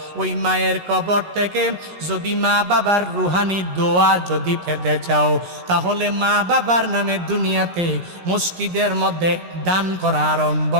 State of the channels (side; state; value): left; late; 17 ms